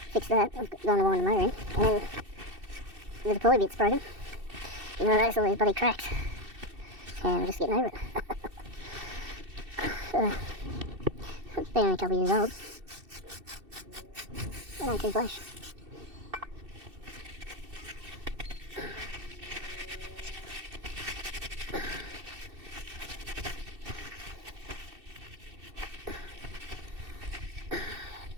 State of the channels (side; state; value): left; late; 2.7 ms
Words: fixed that, I've gone to wind the motor in, and then the deploy bit's broken, and I noticed all these bloody cracks, and I'm just getting over it. So, it's been only a couple of years old. They don't too flash.